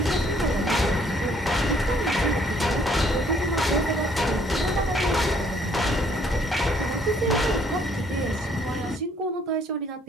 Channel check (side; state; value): both; normal; correlation 0.64